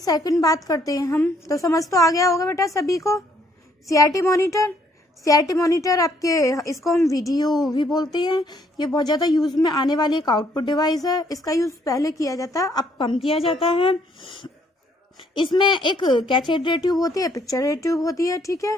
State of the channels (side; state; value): both; normal; correlation 0.67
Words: बात करते हैं हम, तो समझ तो आ गया होगा बेटा सभी को CRT मॉनिटर। CRT मॉनिटर आपके, इसको हम वीडियो भी बोलते हैं। ये बहुत ज़्यादा यूज में आने वाली एक आउटपुट डिवाइस है। इसका यूज पहले किया जाता है, अब कम किया जाता है। इसमें एक कैथोड रे ट्यूब होती है, पिक्चर रे ट्यूब होती है, ठीक है।